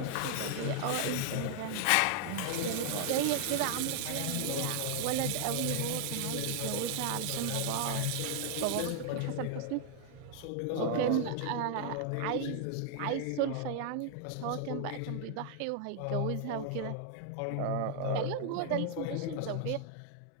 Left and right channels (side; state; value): both; different; correlation 0.00